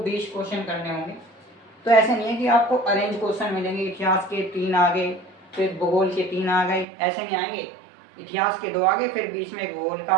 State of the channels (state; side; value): drops out; left; at 6.9 s